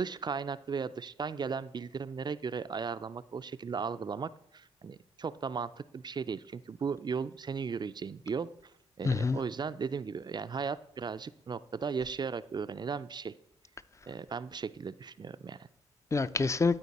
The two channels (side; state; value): both; normal; correlation 0.67